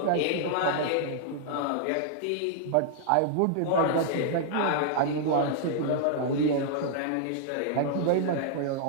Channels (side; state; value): both; different; correlation -0.01